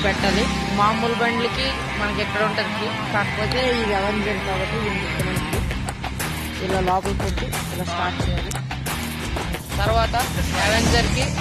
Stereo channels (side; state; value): both; identical; correlation 1.00